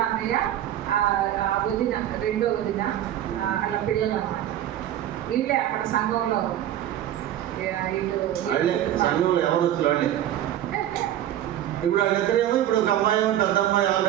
అన్నయ్య వదిన, 2వ వదిన వాళ్ళ పిల్లలు అన్నమాట. వీళ్ళే అక్కడ సంఘంలో సంఘంలో ఎవరు వచ్చి వాళ్ళే. ఇప్పుడు వాళ్ళిద్దరేమో, ఇప్పుడు ఒక అమ్మాయి, పెద్ద అమ్మాయి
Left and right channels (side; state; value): left; quieter; 11.9 dB